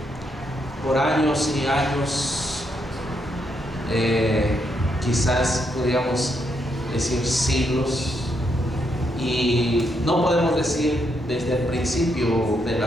por años y años, quizás podríamos decir siglos, y no podemos decir desde el principio de la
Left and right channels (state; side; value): normal; both; correlation 0.78